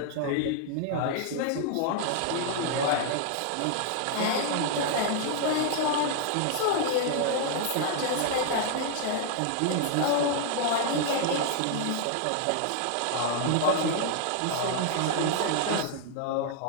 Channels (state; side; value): different; both; correlation 0.00